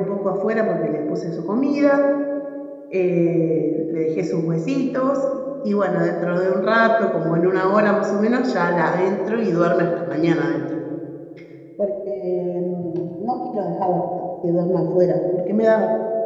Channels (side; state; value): both; identical; correlation 1.00